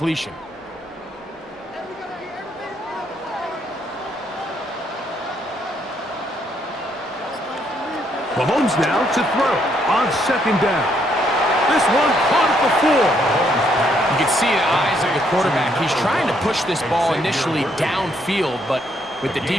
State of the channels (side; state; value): both; normal; correlation 0.72